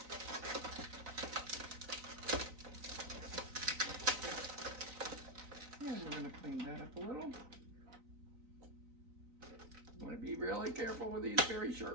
And we're gonna clean that up a little. I want to be really careful with these very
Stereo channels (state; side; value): late; left; 3.9 ms